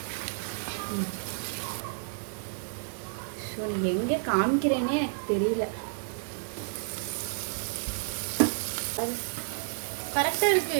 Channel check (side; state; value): left; silent; digital silence